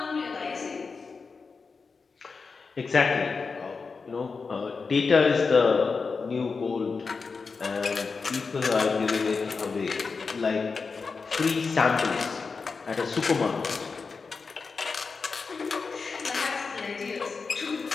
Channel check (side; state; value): right; quieter; 4.8 dB